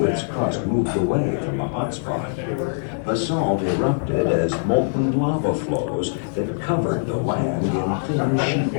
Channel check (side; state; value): right; silent; digital silence